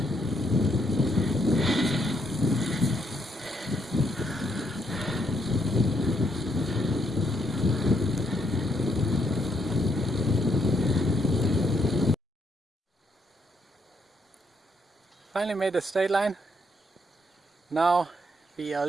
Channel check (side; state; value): both; normal; correlation 0.74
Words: Finally made the state line. Now we are